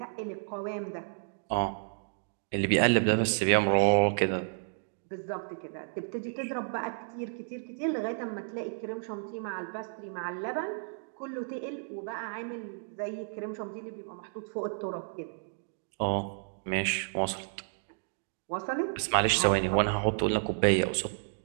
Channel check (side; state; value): left; silent; digital silence